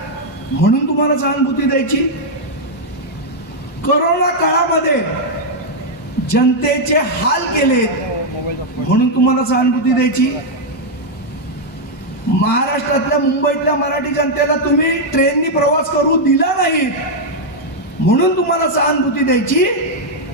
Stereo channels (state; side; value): normal; both; correlation -0.01